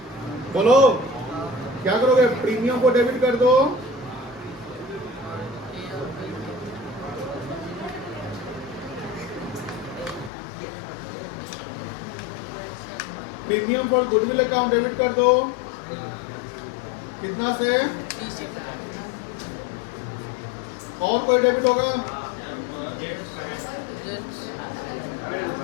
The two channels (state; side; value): drops out; right; at 10.3 s